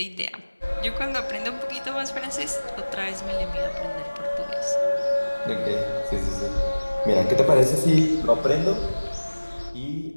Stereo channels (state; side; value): inverted; both; correlation -1.00